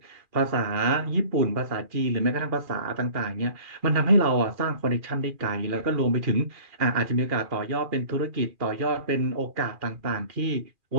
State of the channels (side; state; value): left; late; 2.4 ms